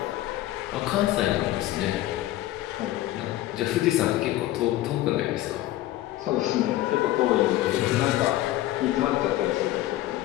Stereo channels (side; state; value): right; quieter; 15.1 dB